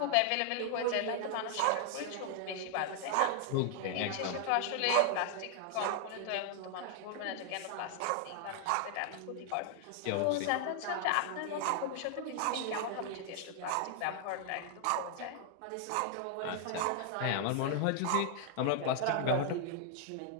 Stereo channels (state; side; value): different; both; correlation 0.00